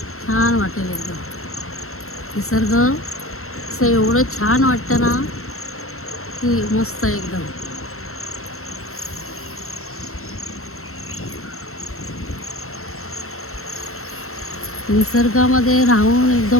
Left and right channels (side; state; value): right; late; 0.63 ms